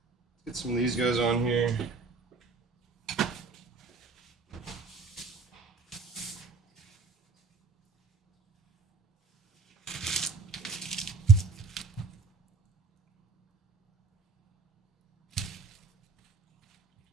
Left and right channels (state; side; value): quieter; left; 4.3 dB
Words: Get some of these guys on here.